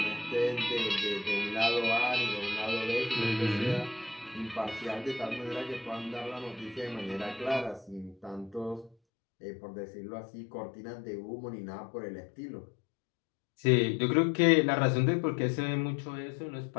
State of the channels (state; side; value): drops out; right; at 9.0 s